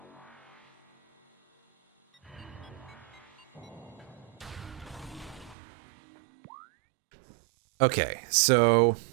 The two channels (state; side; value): drops out; left; at 5.6 s